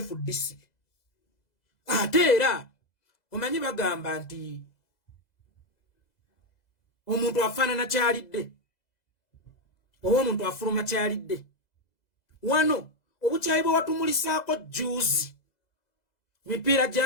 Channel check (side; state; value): right; late; 2.0 ms